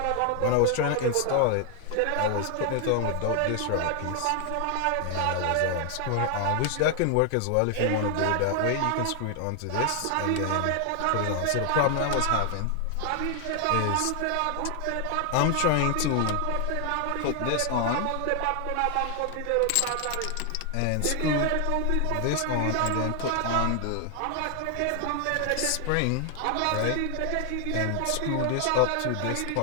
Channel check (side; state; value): both; different; correlation 0.00